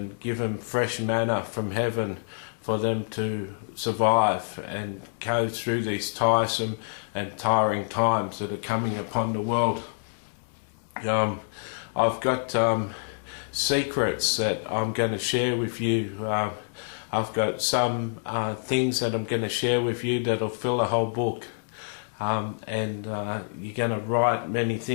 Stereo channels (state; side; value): silent; right; 60 dB below the other